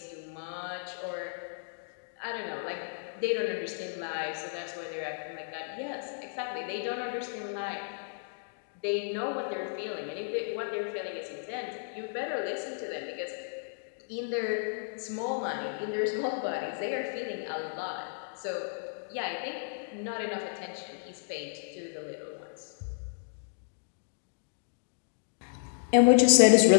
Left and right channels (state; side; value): silent; right; digital silence